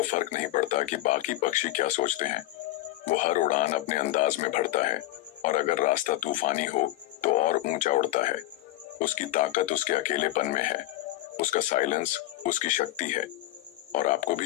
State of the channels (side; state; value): right; quieter; 16.1 dB